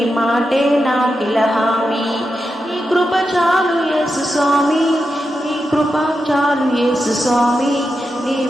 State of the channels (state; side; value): normal; both; correlation 0.88